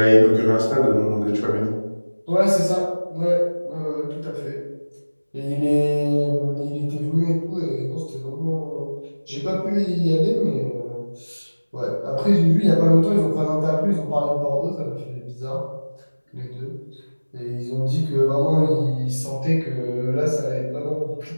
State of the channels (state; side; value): inverted; both; correlation -1.00